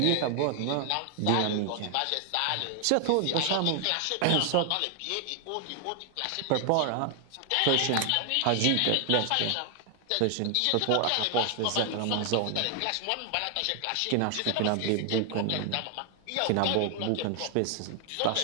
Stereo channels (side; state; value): both; different; correlation 0.00